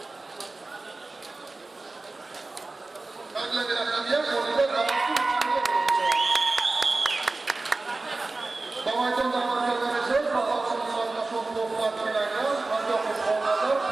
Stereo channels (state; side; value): quieter; left; 3.4 dB